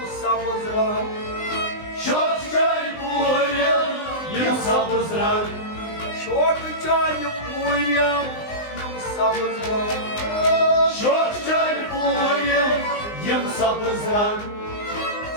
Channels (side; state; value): right; late; 19 ms